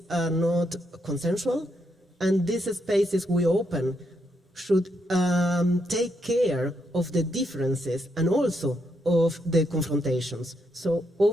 are not consensual, and these spaces we open should take care of the differences and also of the confrontations. So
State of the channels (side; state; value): both; normal; correlation 0.79